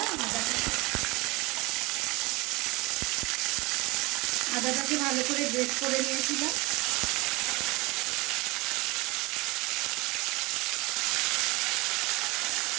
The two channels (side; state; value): left; quieter; 23.9 dB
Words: আদাটাকে ভালো করে গ্রেট করে নিয়েছিলাম।